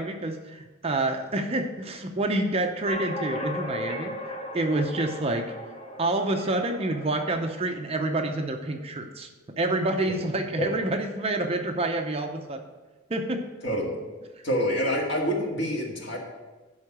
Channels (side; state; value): both; normal; correlation 0.25